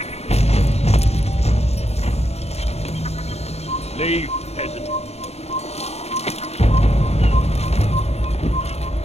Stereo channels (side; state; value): right; late; 0.31 ms